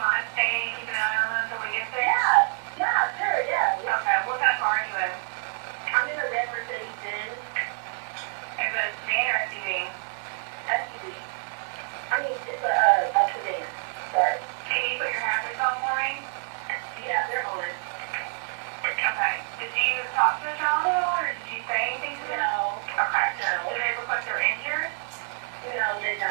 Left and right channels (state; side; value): silent; left; 58 dB below the other